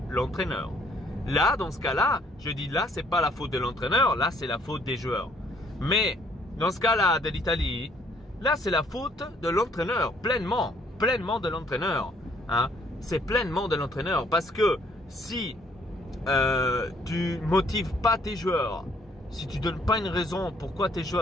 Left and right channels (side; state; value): both; normal; correlation 0.64